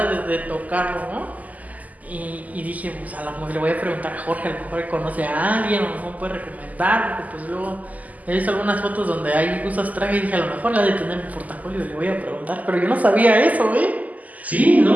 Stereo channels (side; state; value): left; late; 0.077 ms